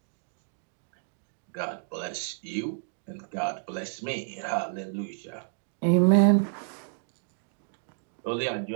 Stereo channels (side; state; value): left; silent; digital silence